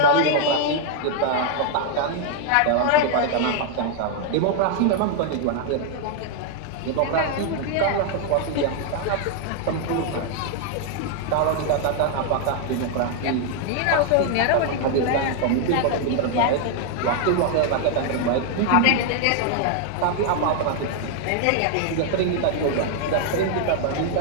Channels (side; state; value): both; different; correlation 0.00